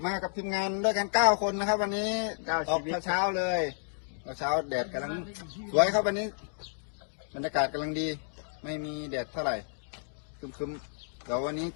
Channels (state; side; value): silent; right; digital silence